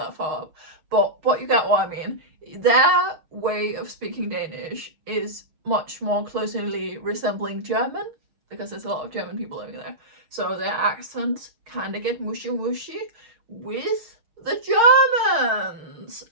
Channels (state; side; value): late; left; 6.4 ms